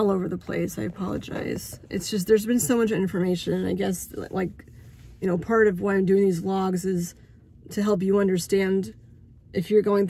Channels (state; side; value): identical; both; correlation 1.00